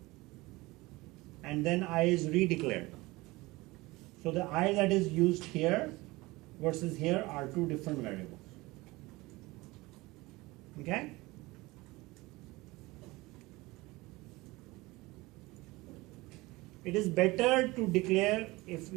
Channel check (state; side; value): quieter; left; 21.4 dB